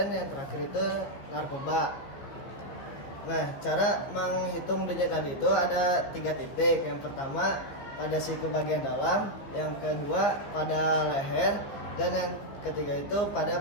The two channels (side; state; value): right; late; 15 ms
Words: yang terakhir itu narkoba. Nah, cara menghitung denyut nadi itu ada 3 titik. Yang pertama pada siku bagian dalam, yang kedua pada leher, dan yang ketiga itu pada